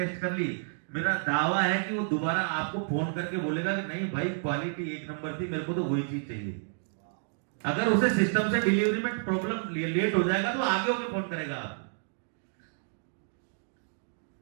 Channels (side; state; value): left; silent; digital silence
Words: कर ली, मेरा दावा है कि वो दोबारा आपको फोन करके बोलेगा कि नहीं भाई क्वालिटी एक नंबर थी, मेरे को तो वही चीज चाहिए। अगर उसे सिस्टम से डिलीवरी में प्रॉब्लम लेट हो जाएगा तो आगे होकर फोन करेगा आप।